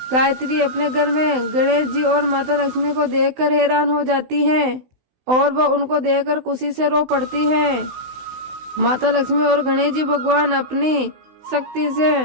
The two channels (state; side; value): late; left; 16 ms